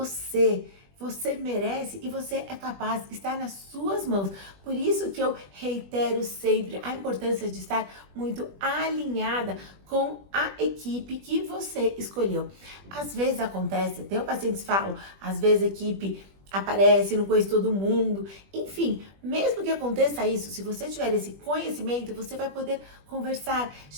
merece e você é capaz, está nas suas mãos. Por isso que eu reitero sempre a importância de estar muito alinhada com a equipe que você escolheu. Às vezes acontece, tem pacientes que falam, às vezes a equipe aparece, não conhece todo mundo. Enfim, mesmo que aconteça isso, se você tiver esse conhecimento, você vai poder conversar,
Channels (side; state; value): left; late; 21 ms